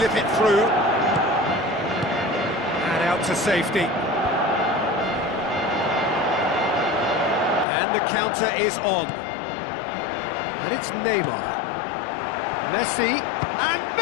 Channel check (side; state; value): right; drops out; at 7.7 s